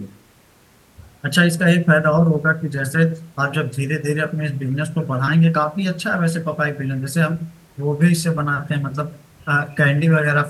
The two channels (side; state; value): both; identical; correlation 1.00